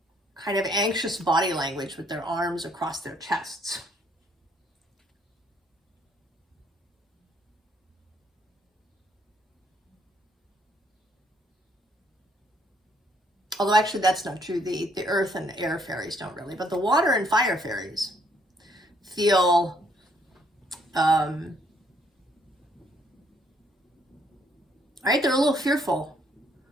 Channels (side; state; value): both; normal; correlation 0.68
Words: of anxious body language with their arms across their chests. Although actually that's not true. The earth and the air fairies don't really, but the water and fire fairies feel right? They're a little fearful.